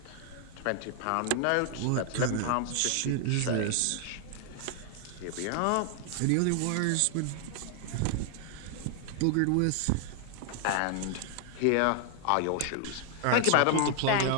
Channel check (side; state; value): both; different; correlation 0.00